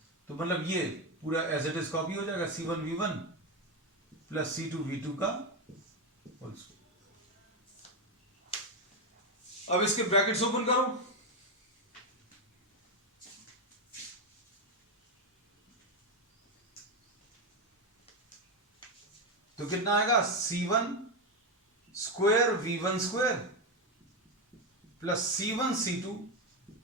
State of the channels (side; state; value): both; normal; correlation 0.09